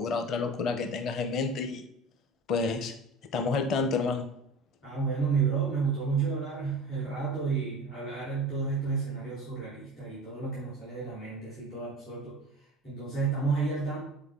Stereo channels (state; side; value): normal; both; correlation 0.36